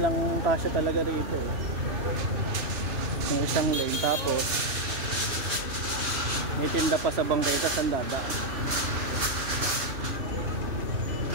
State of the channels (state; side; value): late; left; 2.9 ms